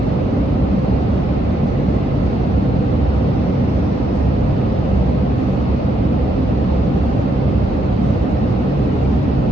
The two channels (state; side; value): normal; both; correlation 0.76